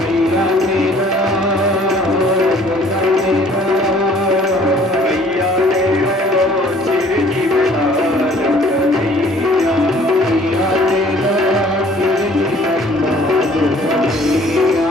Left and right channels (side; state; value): both; normal; correlation 0.55